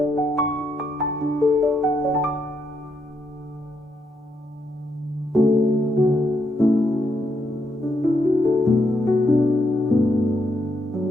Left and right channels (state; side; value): normal; both; correlation 0.78